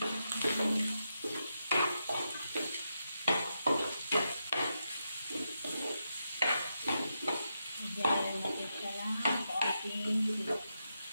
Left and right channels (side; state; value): both; inverted; correlation -0.85